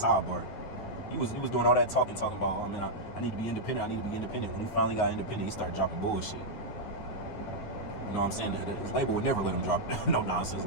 He was doing all that talking about, oh man, I need to be independent, When he finally got independent, he started dropping bullshit. You know what I'm saying? His label would never let him drop no nonsense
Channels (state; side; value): late; right; 9.9 ms